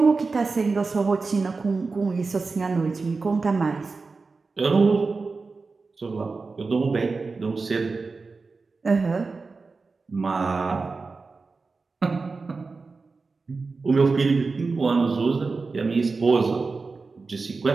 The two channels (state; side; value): quieter; left; 4.2 dB